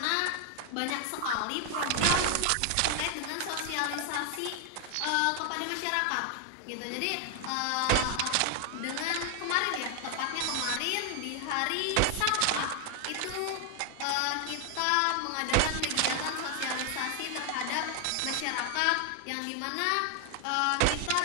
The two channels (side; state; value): both; different; correlation 0.00